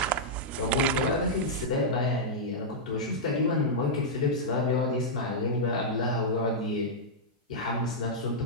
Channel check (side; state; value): both; normal; correlation -0.08